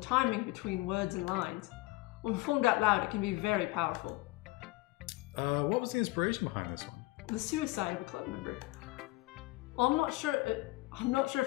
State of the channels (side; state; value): right; quieter; 21.3 dB